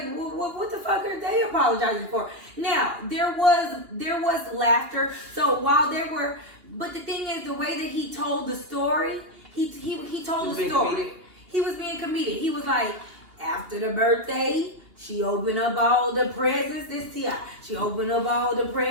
what the fuck are they apologizing for? Now, there was laughter. So while there were, but the thing is, the way that he told the story, he told the story. Comedic. He was being comedic. He was like, after the birthday, she opened up all the presents. This T.I. She opened up all the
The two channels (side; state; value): left; late; 2.8 ms